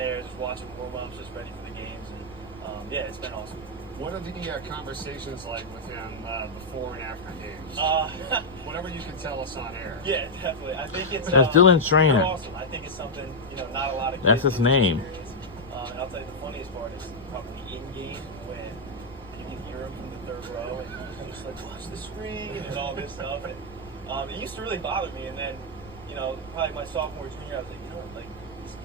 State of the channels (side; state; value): left; noise; rumble, 20 dB below the sound